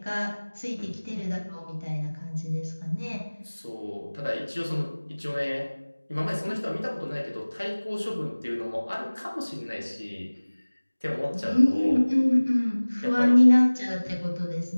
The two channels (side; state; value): both; inverted; correlation -1.00